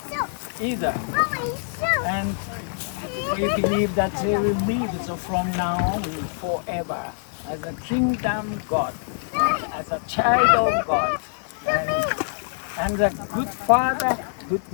either. And we believe that they will live from now on forever as a kingdom God, as a child of God, and a good father, good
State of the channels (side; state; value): right; silent; digital silence